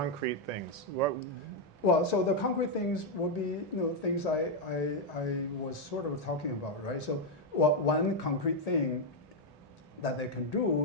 things? What, Well, so the concrete things would be things I was sort of talking about, right? So one concrete thing that they can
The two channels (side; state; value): both; normal; correlation 0.01